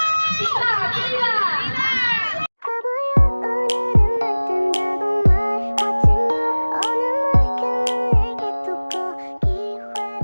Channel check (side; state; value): both; inverted; correlation -1.00